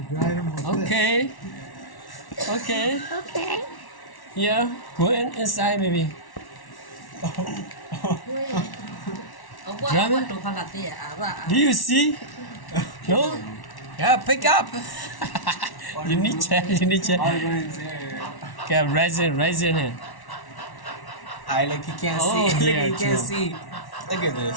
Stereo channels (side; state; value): right; late; 1.1 ms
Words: drive them with this. okay. Okay. Okay. Yeah, go inside maybe. Drama? Do you see? No? Yeah, pick up. You need check. Okay, raising it. I like you can't Oh, see. yeah, Look, you can't true. see. Look at